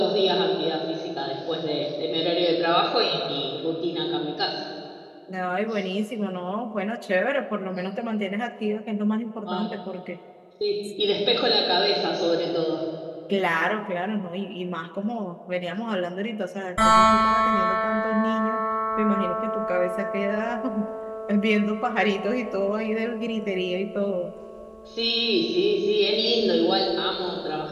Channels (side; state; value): both; identical; correlation 1.00